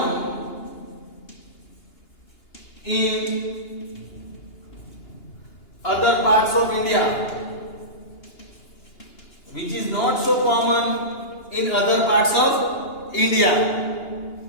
in other parts of India. Which is not so common in other parts of India.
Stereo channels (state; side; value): late; right; 2.9 ms